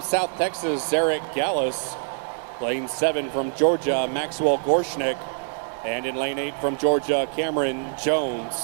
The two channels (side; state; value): left; silent; digital silence